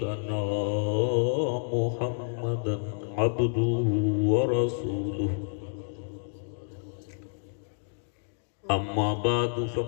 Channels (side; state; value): right; silent; digital silence